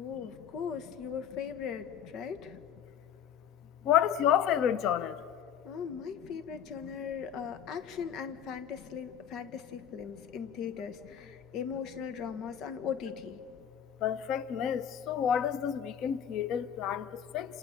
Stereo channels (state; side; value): quieter; right; 8.8 dB